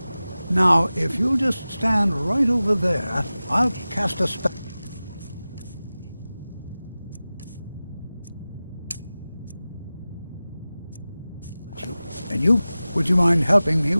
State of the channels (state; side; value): inverted; both; correlation -0.96